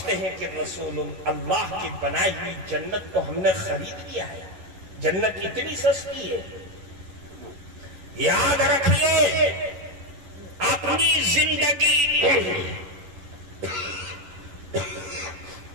ہیں کہ رسول اللہ کی بنائی ہوئی جنت کو ہم نے خرید لیا ہے، جنت اتنی سستی ہے۔ یاد رکھیے، اپنی زندگی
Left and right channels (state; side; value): late; left; 11 ms